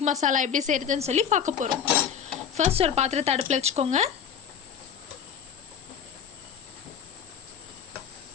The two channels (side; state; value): right; quieter; 7.9 dB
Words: மசாலா எப்படி செய்யறதுன்னு சொல்லி பார்க்க போறோம். ஃபர்ஸ்ட் ஒரு பாத்திரத்தை அடுப்புல வச்சுக்கோங்க.